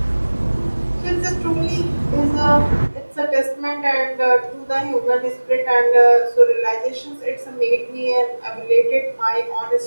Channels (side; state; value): both; inverted; correlation -1.00